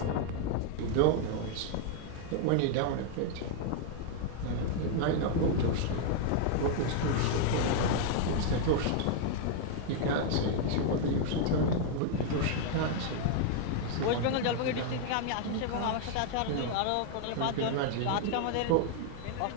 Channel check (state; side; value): different; both; correlation 0.00